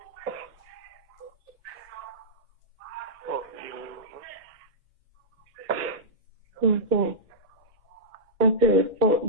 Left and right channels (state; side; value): normal; both; correlation -0.12